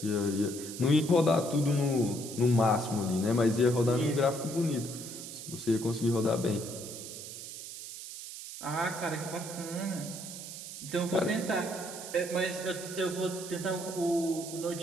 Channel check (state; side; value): noise; right; hiss, 10 dB below the sound